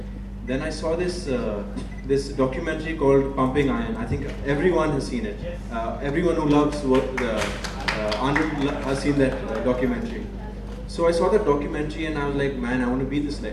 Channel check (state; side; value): identical; both; correlation 1.00